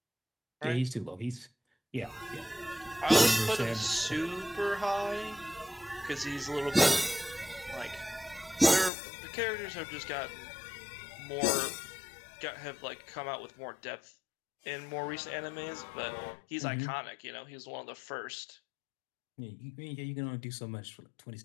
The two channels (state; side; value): drops out; right; at 8.9 s